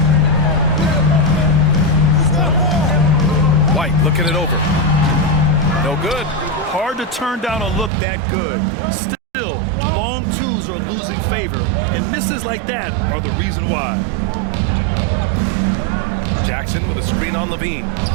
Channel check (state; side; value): drops out; left; at 7.9 s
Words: White looking it over. No good. Hard to turn down a look that good. Still, long twos are losing favor, and misses like that are the reason why. Jackson with a screen on LaVine.